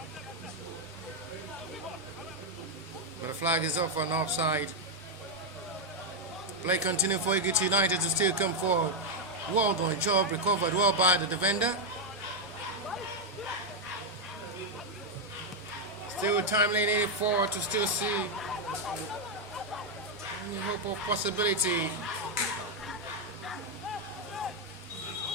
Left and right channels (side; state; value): both; normal; correlation 0.01